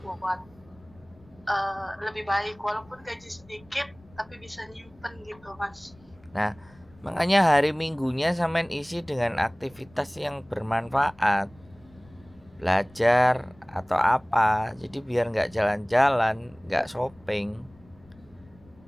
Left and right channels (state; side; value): noise; left; rumble, 26 dB below the sound